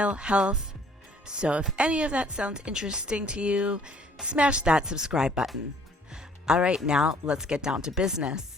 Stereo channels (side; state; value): both; normal; correlation 0.58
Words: health. So if any of that sounds interesting to you, smash that subscribe button. Alright, now let's get down to